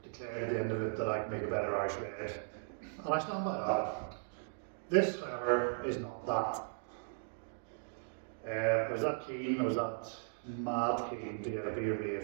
declared at the end of it that I could make a better Irish red. And I stand by that. This, however, is not that. I was that keen, I was that mad keen to get a beer made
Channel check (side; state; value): left; silent; digital silence